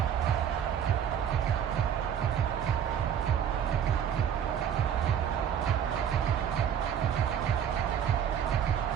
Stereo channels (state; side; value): quieter; left; 8.8 dB